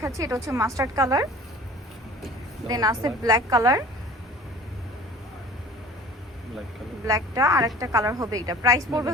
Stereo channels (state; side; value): normal; both; correlation 0.44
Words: এটা হচ্ছে মাস্টার্ড কালার, দেন আছে ব্ল্যাক কালার, ব্ল্যাক কালার ব্ল্যাকটা, আর একটা কালার হবে এটা। প্রাইস পড়বে